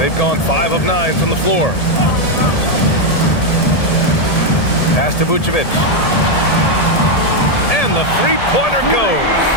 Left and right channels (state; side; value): late; right; 1.8 ms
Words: gone 5 of 9 from the floor. Pass to Vucevic. And the three-pointer goes.